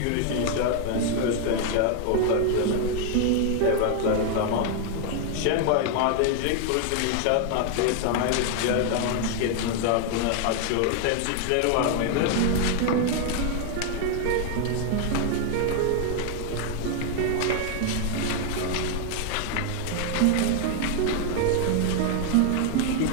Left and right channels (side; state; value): both; different; correlation 0.00